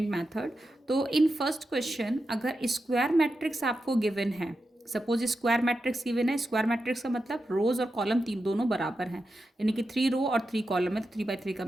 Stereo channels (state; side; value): normal; both; correlation 0.89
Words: method. तो इन फर्स्ट क्वेश्चन अगर स्क्वायर मैट्रिक्स आपको गिवन है, सपोज स्क्वायर मैट्रिक्स गिवन है, स्क्वायर मैट्रिक्स का मतलब रोज और कॉलम तीन दोनों बराबर हैं, यानी कि 3 रो और 3 कॉलम है, तो 3 by 3 का